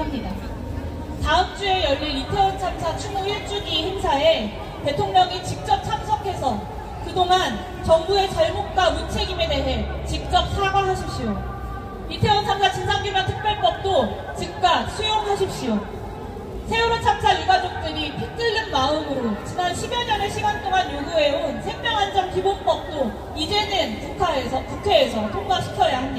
다음 주에 열릴 이태원 참사 추모 1주기 행사에 대통령이 직접 참석해서 그동안 정부의 잘못과 무책임에 대해 직접 사과하십시오. 이태원 참사 진상규명특별법도 즉각 수용하십시오. 세월호 참사 유가족들이 피 끓는 마음으로 지난 10여 년의 시간 동안 요구해온 생명안전기본법도 이제는 국회에서 통과시켜야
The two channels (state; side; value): identical; both; correlation 1.00